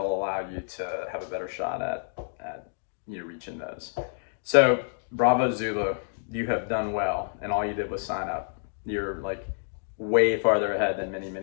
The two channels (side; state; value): right; silent; digital silence